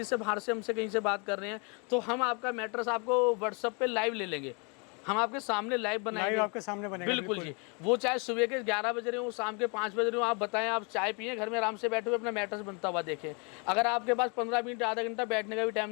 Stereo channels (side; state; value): right; quieter; 34.0 dB